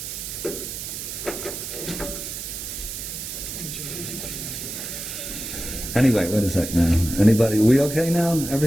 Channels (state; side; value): noise; right; hiss, 7 dB below the sound